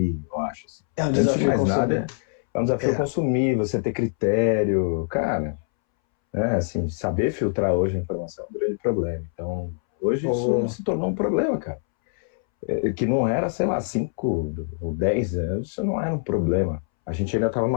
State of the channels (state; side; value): silent; right; 62 dB below the other